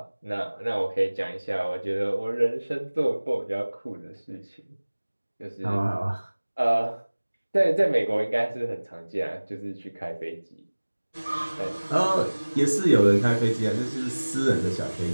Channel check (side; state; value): both; inverted; correlation -1.00